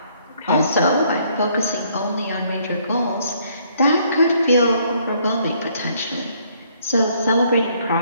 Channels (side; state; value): both; inverted; correlation -0.66